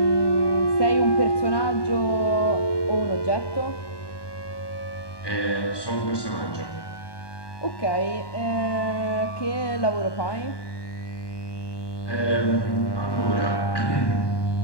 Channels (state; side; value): late; right; 1.2 ms